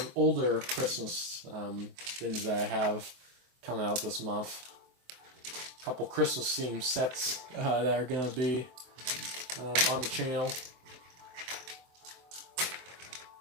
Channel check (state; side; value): late; left; 23 ms